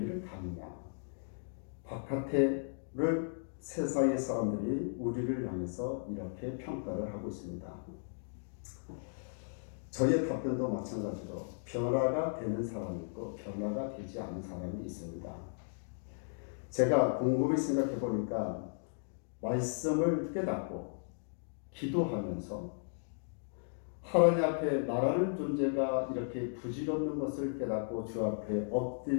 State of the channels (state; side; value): silent; right; digital silence